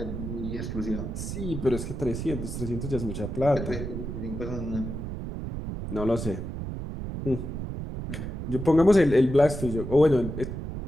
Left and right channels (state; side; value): noise; right; rumble, 6 dB below the sound